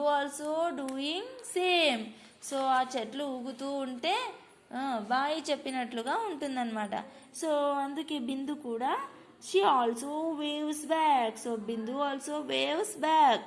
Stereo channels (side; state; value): both; identical; correlation 1.00